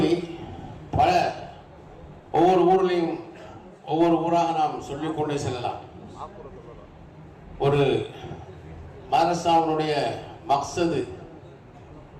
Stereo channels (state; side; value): identical; both; correlation 1.00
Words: பல ஒவ்வொரு ஊர்லேயும் ஒவ்வொரு ஊராக நாம் சொல்லிக்கொண்டே செல்லலாம். ஒரு மதரசாவுடைய மக்சது,